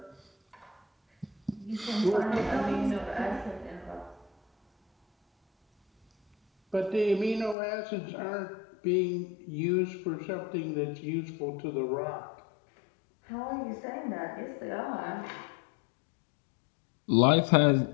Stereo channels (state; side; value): drops out; right; at 7.6 s